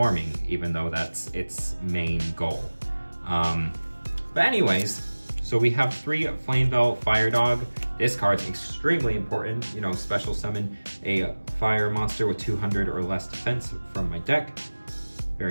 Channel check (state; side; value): inverted; both; correlation -1.00